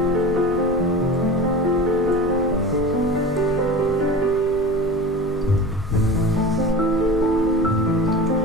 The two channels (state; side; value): normal; both; correlation 0.32